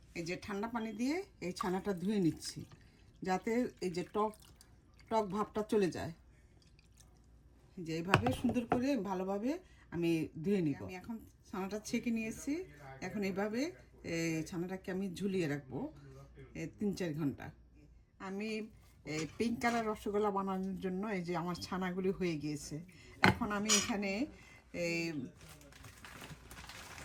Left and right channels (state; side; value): identical; both; correlation 1.00